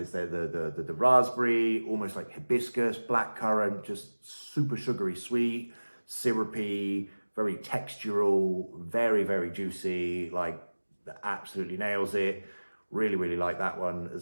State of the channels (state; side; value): inverted; both; correlation -1.00